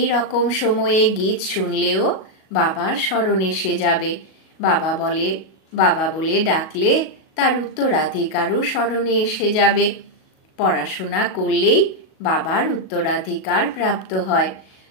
রকম সময়ে গীত শুনলেও বাবার স্মরণ এসে যাবে। বাবা বলে ডাকলে তার উত্তরাধিকারও স্মরণে এসে যাবে। পড়াশোনা করলেই বাবার উত্তরাধিকার প্রাপ্ত হয়।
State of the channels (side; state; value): right; late; 37 ms